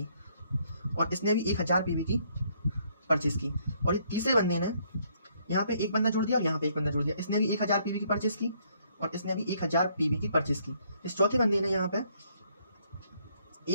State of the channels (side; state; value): both; inverted; correlation -0.68